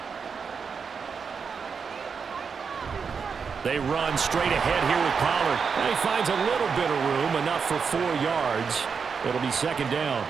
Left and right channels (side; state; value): left; quieter; 5.9 dB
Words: They run straight ahead here with Pollard. And he finds a little bit of room, enough for 4 yards. It'll be second down.